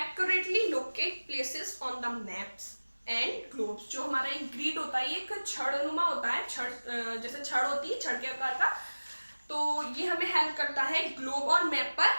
locate places on the maps and globes. जो हमारा एक ग्रिड होता है, ये एक छड़नुमा होता है, छड़ जैसे छड़ होती है, छड़ के आकार का, तो ये हमें हेल्प करता है ग्लोब और मैप पर,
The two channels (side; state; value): both; inverted; correlation -1.00